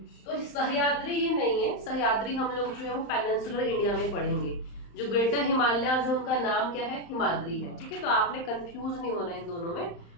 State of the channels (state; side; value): late; right; 35 ms